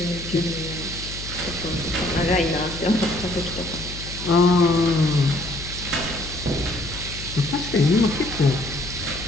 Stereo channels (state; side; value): noise; left; hum, 11 dB below the sound